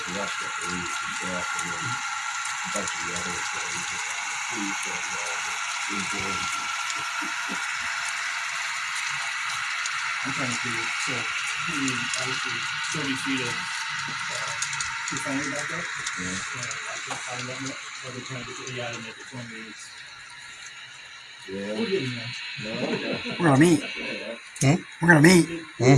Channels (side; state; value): both; identical; correlation 1.00